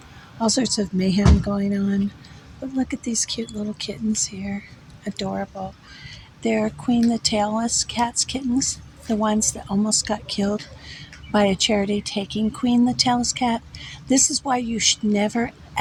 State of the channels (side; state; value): both; identical; correlation 1.00